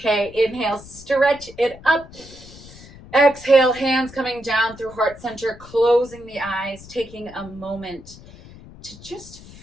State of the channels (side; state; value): left; noise; rumble, 19 dB below the sound